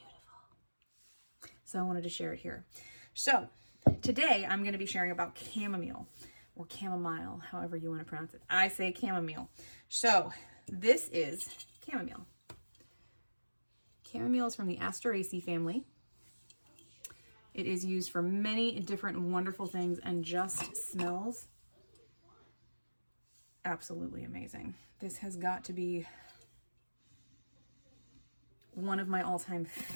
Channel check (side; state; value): both; inverted; correlation -1.00